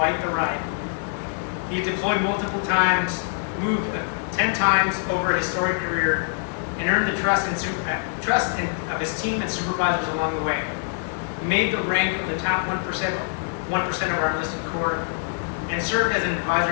the ride. He deployed multiple times, moved 10 times over a historic career, and earned the trust of his team and supervisors along the way. He made the rank of the top 1% of our enlisted corps, and served as an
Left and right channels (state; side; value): silent; right; 62 dB below the other